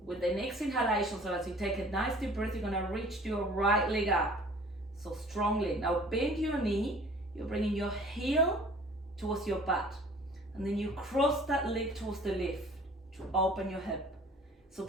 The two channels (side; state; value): both; normal; correlation 0.50